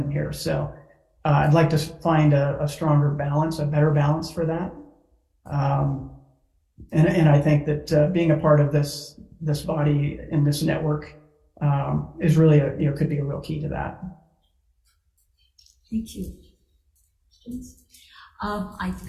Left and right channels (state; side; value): identical; both; correlation 1.00